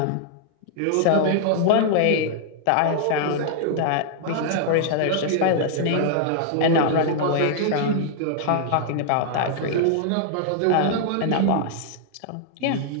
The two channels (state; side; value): different; both; correlation -0.01